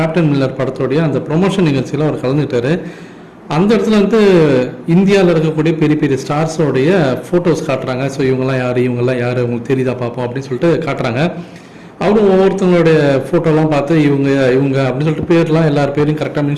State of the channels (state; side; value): identical; both; correlation 1.00